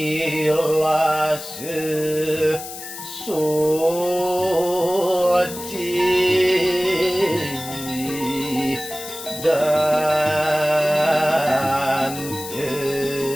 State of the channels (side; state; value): left; noise; hiss, 11 dB below the sound